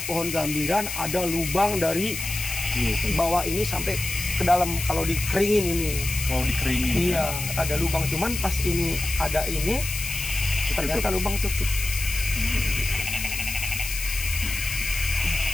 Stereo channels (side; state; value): left; noise; hiss, 5 dB below the sound